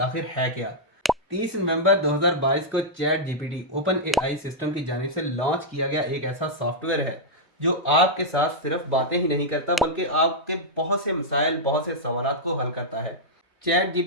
है क्या। 30 नवंबर 2022 को chat GPT open AI system की जानिब से लॉन्च किया गया एक ऐसा सॉफ्टवेयर है जो आपके साथ सिर्फ बातें ही नहीं करता बल्कि आपके बहुत से मसाइल, बहुत से सवालात को हल करता है। चैट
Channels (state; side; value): normal; both; correlation -0.07